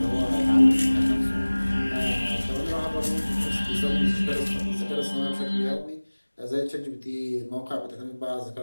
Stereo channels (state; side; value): inverted; both; correlation -1.00